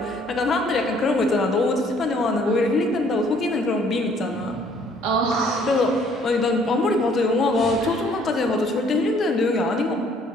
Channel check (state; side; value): normal; both; correlation 0.61